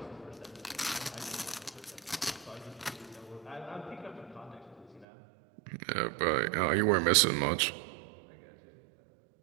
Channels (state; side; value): drops out; left; at 5.1 s